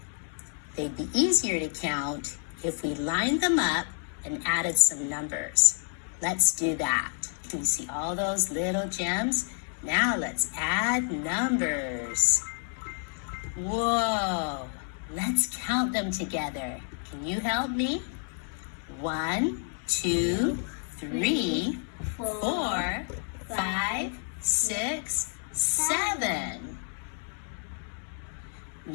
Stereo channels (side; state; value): right; silent; 58 dB below the other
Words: they'd be easier to count if we lined them up and added some numbers. Let's do that. Can you see all those little gems? Now let's add numbers. Whoa, let's count them together. Can you help me? 1, 2, 3, 4, 5, 6, 7.